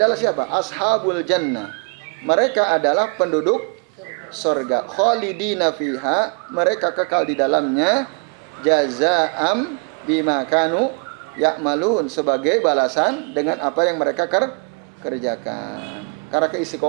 siapa? Ashabul jannah. Mereka adalah penduduk surga. Khalidina fiha, mereka kekal di dalamnya. Jazaa'am bima kanu ya'malun, sebagai balasan dengan apa yang mereka kerjakan. Karena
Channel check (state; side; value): quieter; left; 33.3 dB